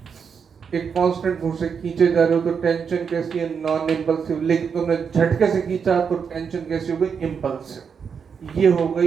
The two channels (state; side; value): quieter; left; 6.5 dB